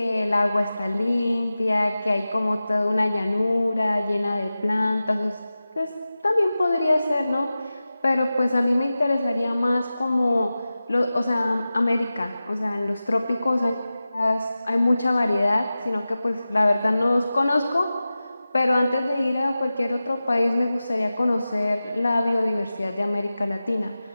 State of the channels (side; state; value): both; inverted; correlation -0.95